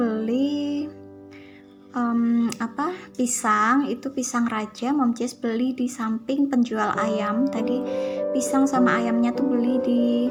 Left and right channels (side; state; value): both; identical; correlation 1.00